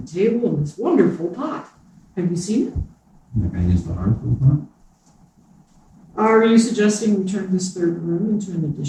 the table and this wonderful pot. Have you seen it? You're going to use the hearth for the pot? Are you suggesting we turn this third room into an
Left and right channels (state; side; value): identical; both; correlation 1.00